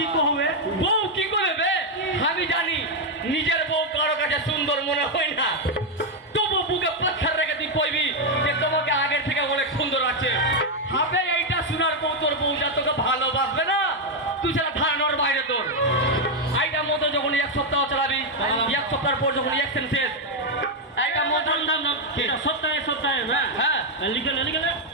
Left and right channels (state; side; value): normal; both; correlation 0.02